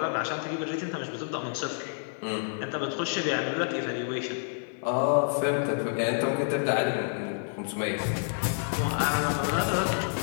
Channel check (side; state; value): right; silent; digital silence